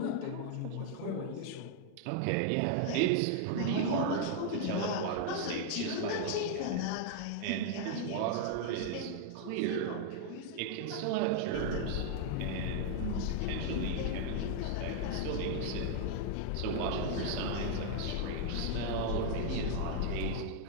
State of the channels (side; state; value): both; different; correlation -0.01